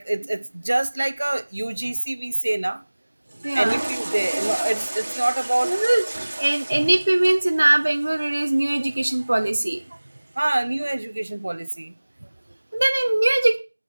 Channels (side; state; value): both; inverted; correlation -1.00